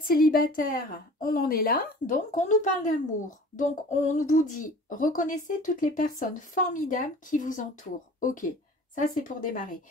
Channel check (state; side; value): normal; both; correlation 0.44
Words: célibataire, on en est là, donc on nous parle d'amour. Donc on vous dit, reconnaissez toutes les personnes formidables qui vous entourent. Ok, ça c'est pour démarrer.